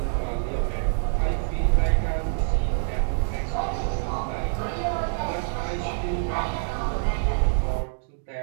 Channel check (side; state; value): left; silent; digital silence